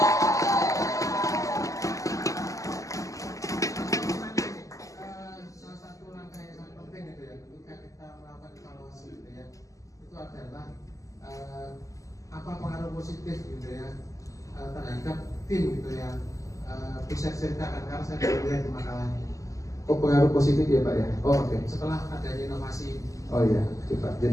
Salah satu langkah yang sangat penting gitu ya, ketika kita melakukan evaluasi gitu ya, itu adalah apa pengaruh positif gitu ya terhadap tim gitu ya. Bisa ceritakan karena saya baru lihat di makalah Oh pengaruh positif ya Pak ya. Oh oke. setelah adanya inovasi. Oh iya, oke Pak.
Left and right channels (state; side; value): late; right; 0.16 ms